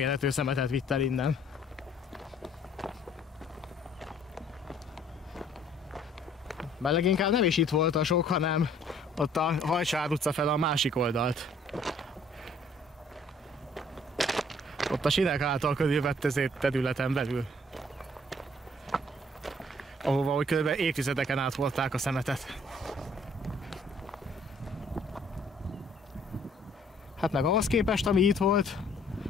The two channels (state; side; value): normal; both; correlation 0.59